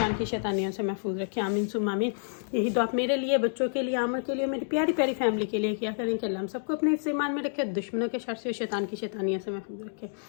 की शैतानियों से महफूज रखे। आमीन सुम्मा आमीन। यही दुआ मेरे लिए, बच्चों के लिए, आमर के लिए, मेरी प्यारी प्यारी फैमिली के लिए किया करें कि अल्लाह हम सबको अपने हिस्से मान में रखे, दुश्मनों के शर से और शैतान की शैतानियों से महफूज रखे।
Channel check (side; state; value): right; silent; digital silence